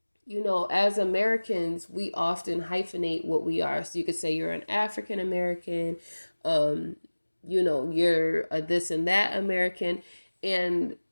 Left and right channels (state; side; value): inverted; both; correlation -1.00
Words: as Americans, we often hyphenate what we are. So, you could say you're an African American, you're a this and that American. And